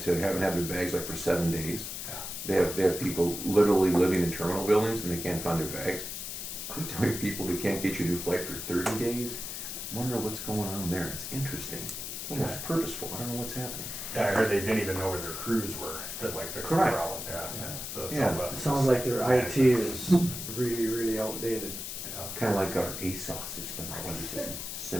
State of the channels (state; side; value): noise; left; hiss, 6 dB below the sound